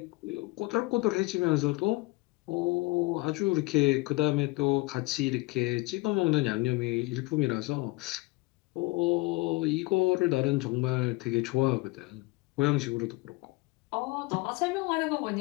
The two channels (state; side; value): quieter; right; 22.7 dB